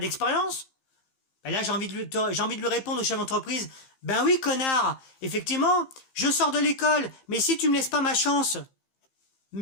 Ben là, j'ai envie de lui répondre au chef d'entreprise, ben oui, connard, effectivement, je sors de l'école, mais si tu me laisses pas ma chance, me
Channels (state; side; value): late; right; 15 ms